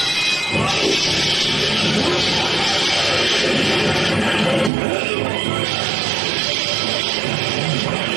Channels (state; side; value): drops out; left; at 4.7 s